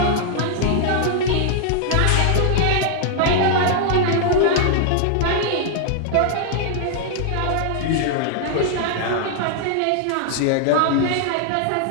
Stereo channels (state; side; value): different; both; correlation -0.01